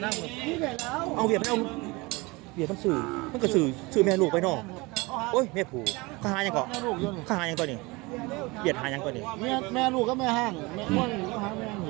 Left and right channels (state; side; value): quieter; left; 24.3 dB